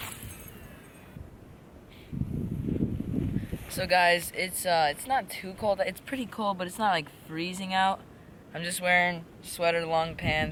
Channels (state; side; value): identical; both; correlation 1.00